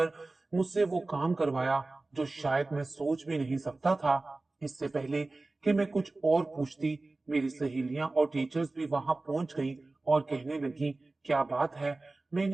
मुझसे वो काम करवाया जो शायद मैं सोच भी नहीं सकता था। इससे पहले कि मैं कुछ और पूछती, मेरी सहेलियां और टीचर्स भी वहां पहुंच गईं और कहने लगी, क्या बात है।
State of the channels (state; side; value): quieter; left; 3.2 dB